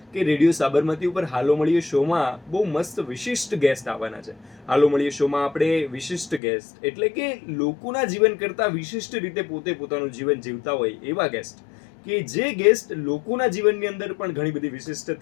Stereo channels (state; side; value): drops out; right; at 6.4 s